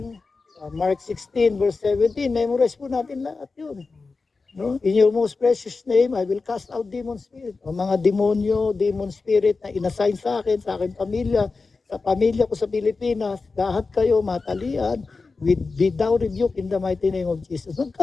Mark 16 verse 17, memorize po natin lahat yun. No? In your most precious name, I will cast out demon spirit. O mga demonyo, demon spirit na inassign sa aking pamilya, sa pamilya ko sa Pilipinas, lahat kayo matalian, without rebuke in the mighty name of Jesus.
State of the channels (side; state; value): right; quieter; 4.1 dB